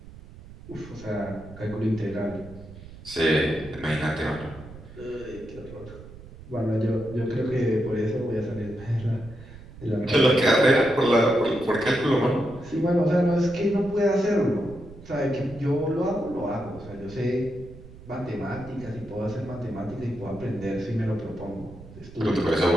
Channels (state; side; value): noise; right; rumble, 17 dB below the sound